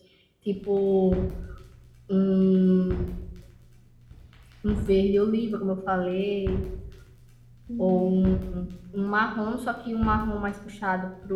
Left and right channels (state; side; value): identical; both; correlation 1.00